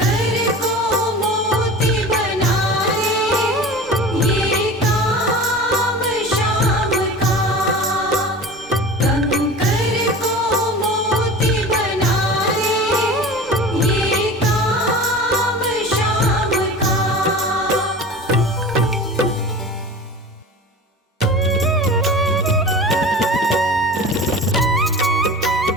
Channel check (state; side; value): normal; both; correlation 0.36